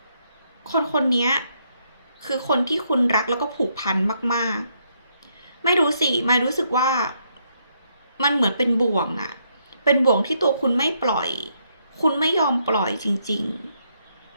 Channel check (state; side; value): inverted; both; correlation -0.75